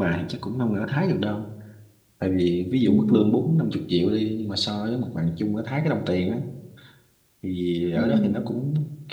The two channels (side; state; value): both; identical; correlation 1.00